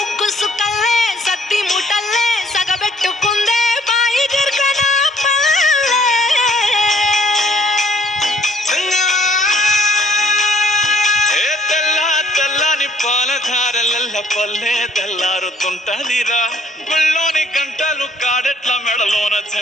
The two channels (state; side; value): normal; both; correlation 0.62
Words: సుక్కల్లే సత్తి ముటల్లే సగబెట్టుకుందే బాయి గిర్కన పల్లె తెల్ల తెల్లని పాలధారలల్ల పల్లె తెల్లారుతుంటదిరా గుళ్ళోని గంటలు కాడెట్ల మెడలోన